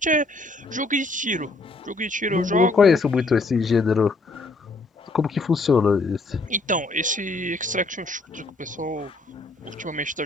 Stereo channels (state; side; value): quieter; right; 3.2 dB